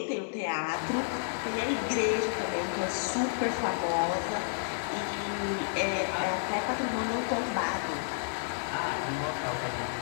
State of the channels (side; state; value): right; silent; digital silence